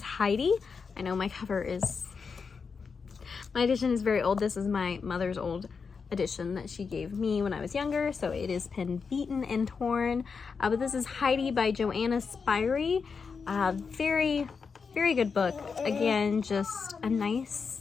Heidi. I know my edition is very old. This is my mother's old edition that she gave me when I was younger, so it is pen beaten and torn. But this is Heidi by Joanna Spyri. Very, very good book. Again, just a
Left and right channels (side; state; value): right; quieter; 5.4 dB